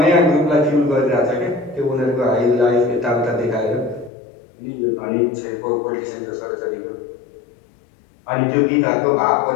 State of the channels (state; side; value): drops out; right; at 4.1 s